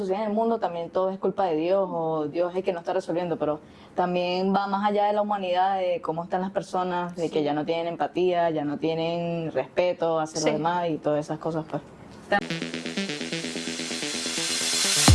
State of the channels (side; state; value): both; identical; correlation 1.00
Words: en el mundo también todo es culpa de Dios o Dios es el que no está resolviendo, pero también va más allá de la humanidad, de cómo están las personas, de que ya no tienen empatía, ya no tienen respeto hacia Sí. los demás y todas esas cosas pues.